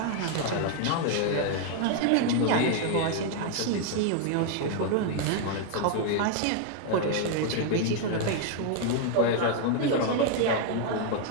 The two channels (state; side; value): different; both; correlation 0.00